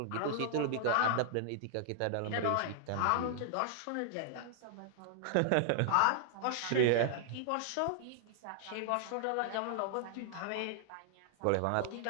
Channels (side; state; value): both; different; correlation -0.01